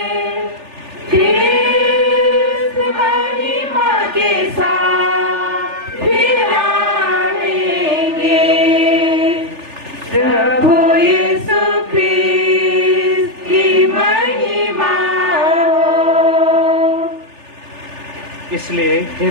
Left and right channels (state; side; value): late; left; 3.4 ms